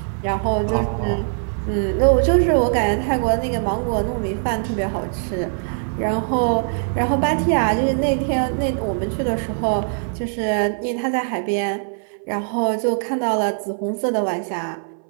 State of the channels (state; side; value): silent; left; 60 dB below the other